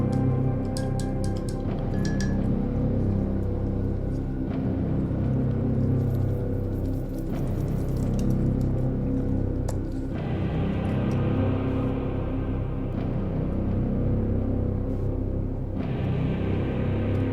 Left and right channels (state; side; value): identical; both; correlation 1.00